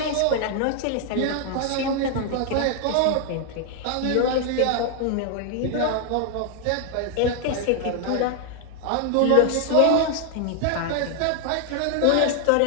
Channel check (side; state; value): both; different; correlation 0.00